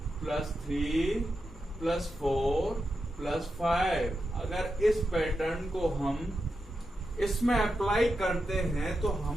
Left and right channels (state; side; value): normal; both; correlation 0.88